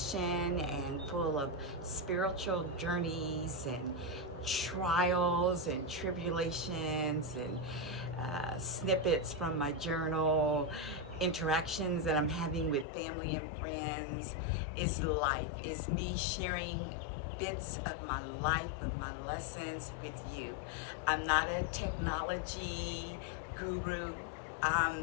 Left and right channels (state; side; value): drops out; right; at 12.9 s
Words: and full of spiritual journeys and trials and tribulations and snippets from my journal, interactions that I'm having with family and friends. It's life. It's me sharing bits of my life, of my lessons with you. I'm not a technology guru.